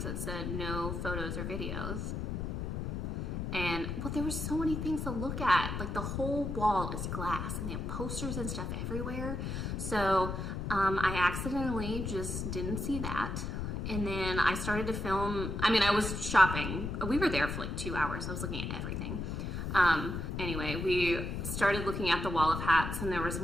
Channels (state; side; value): noise; left; rumble, 3 dB below the sound